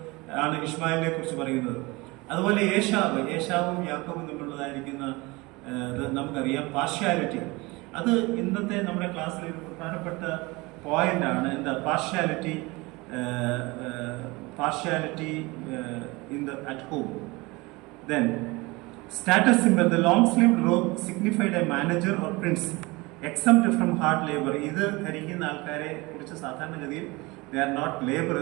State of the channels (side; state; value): left; quieter; 23.7 dB